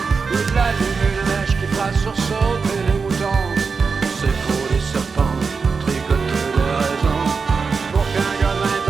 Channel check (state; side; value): quieter; left; 5.0 dB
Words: Il allume une mèche qui fera sursauter les moutons. C'est pour les serpents tricoter des raisons pour qu'un gars de